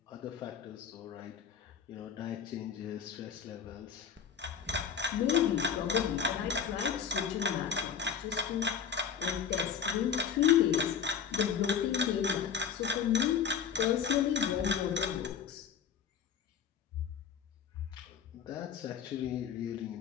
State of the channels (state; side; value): quieter; right; 7.4 dB